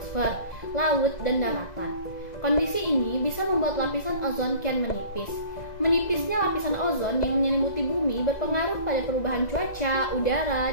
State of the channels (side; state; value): right; late; 2.0 ms